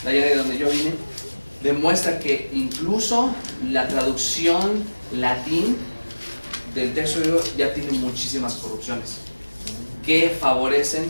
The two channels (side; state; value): both; inverted; correlation -1.00